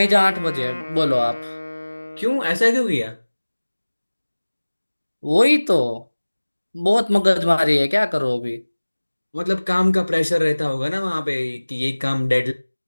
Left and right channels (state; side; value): inverted; both; correlation -1.00